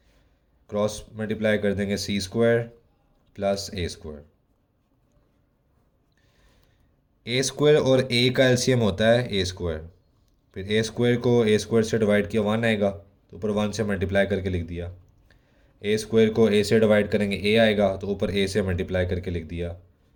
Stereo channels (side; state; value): both; identical; correlation 1.00